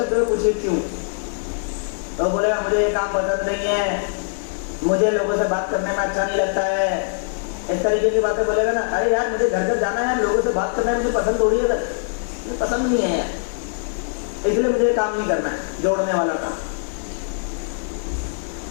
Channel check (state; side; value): silent; right; 64 dB below the other